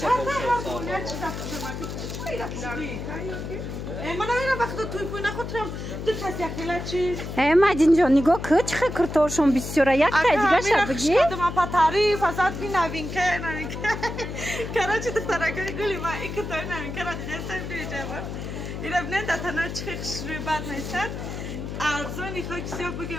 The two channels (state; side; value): noise; left; hum, 7 dB below the sound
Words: دستاف یا چه دستاف خیلی رفتی من نمیدونم وقتی توی پوی نخوترم دو کسی اخیلا چیز مجین جان نگاه که چه کرتورشون بسیاره یک تا دیگه شد بگی؟ اگه من پا تعریف ازت بی نوین که کراچی دخترکه گلی من این کتای نوین که را دیده سن بیجه بود این ابنه دتنا چه خشروی بد نیستن ارزانی خاکسی ها بگه